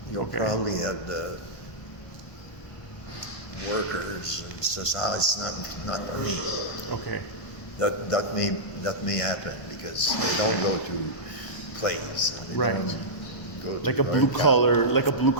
you'll probably have the workers and society. It's not for me. Okay. That may happen because they don't go to plays. Right. Like a blue collar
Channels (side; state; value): right; late; 1.1 ms